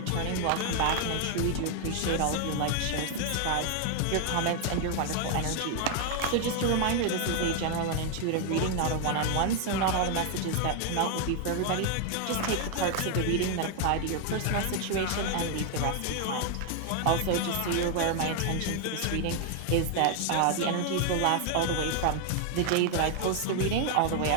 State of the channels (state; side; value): different; both; correlation 0.00